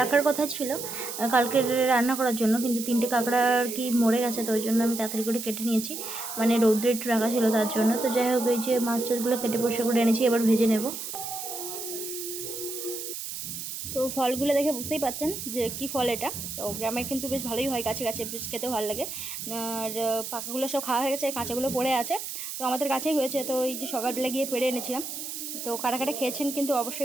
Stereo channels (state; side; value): noise; right; hiss, 7 dB below the sound